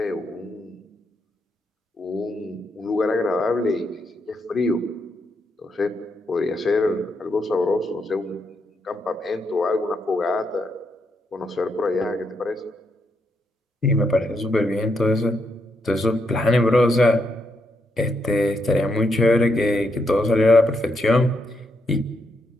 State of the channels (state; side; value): normal; both; correlation 0.79